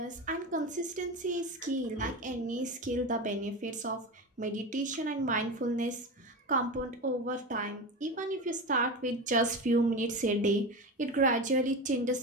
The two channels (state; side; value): normal; both; correlation 0.23